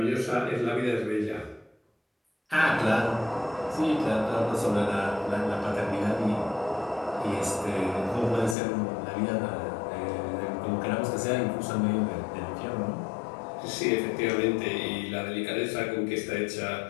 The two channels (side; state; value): right; drops out; at 8.6 s